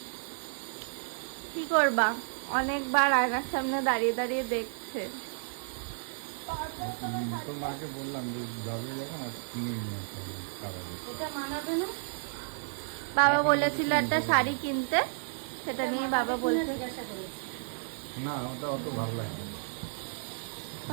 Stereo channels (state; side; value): silent; left; digital silence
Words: কি করবা, অনেকবার আয়নার সামনে দাঁড়িয়ে দাঁড়িয়ে দেখছে। তোর মাকে বললাম যে যাবে যখন আর কিনে নিয়ে আসতে হবে খাবারে। এটা মানাবে না। বাবা বলেছিল একটা শাড়ি কিনতে, সেটা নিয়ে বাবা বলছে জিজ্ঞাসা করেছি। না ওটা অত ভালো লাগে না।